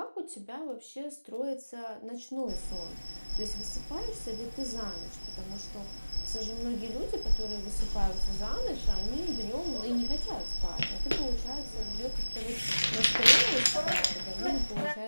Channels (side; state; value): both; inverted; correlation -1.00